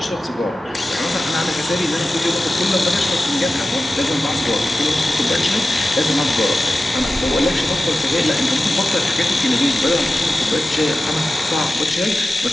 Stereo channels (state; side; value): normal; both; correlation 0.94